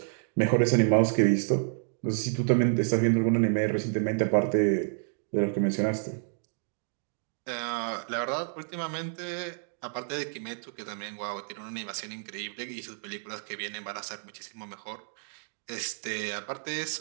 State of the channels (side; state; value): left; silent; digital silence